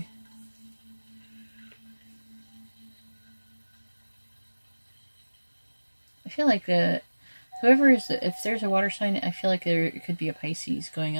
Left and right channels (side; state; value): both; inverted; correlation -1.00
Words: I feel like whoever is, if there's a water sign, I feel like there could be a Pisces going